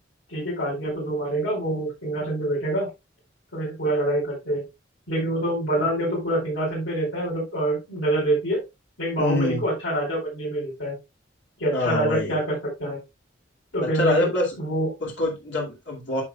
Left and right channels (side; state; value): both; normal; correlation 0.34